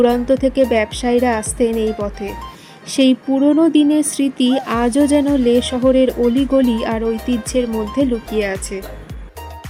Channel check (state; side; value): identical; both; correlation 1.00